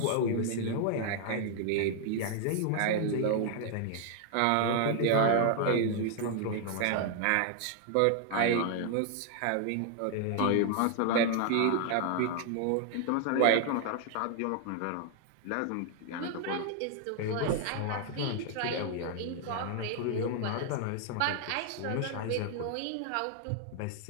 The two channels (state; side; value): different; both; correlation 0.00